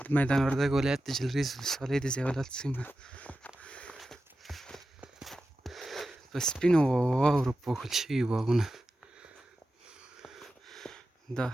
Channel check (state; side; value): normal; both; correlation 0.92